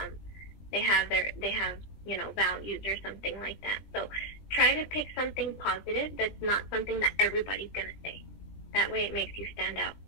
They have you know, values or something like that. So try to pick something positive that's not something that everybody's going to say. That way it makes you stand out.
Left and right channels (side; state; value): right; late; 20 ms